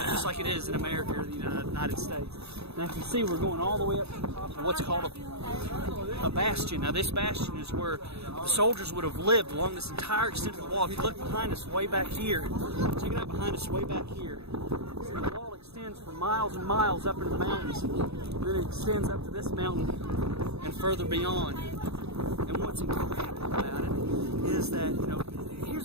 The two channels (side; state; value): left; late; 0.79 ms